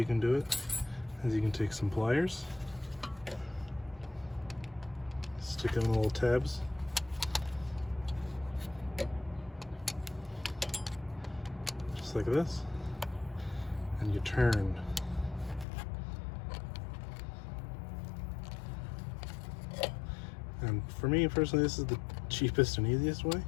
can do it is you can take some pliers, stick them in the little tabs, just like this, and you turn. And for me personally, this is the cheapest and easiest way,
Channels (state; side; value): drops out; right; at 15.7 s